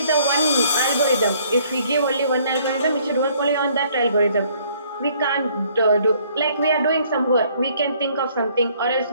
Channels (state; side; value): inverted; both; correlation -0.62